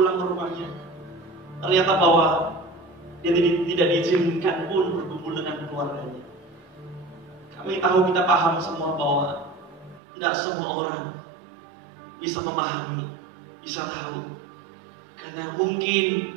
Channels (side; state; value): left; drops out; at 10.0 s